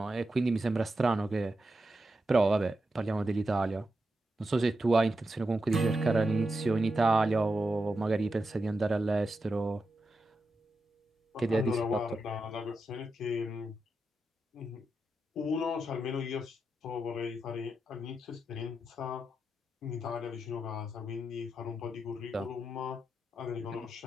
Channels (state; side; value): normal; both; correlation 0.88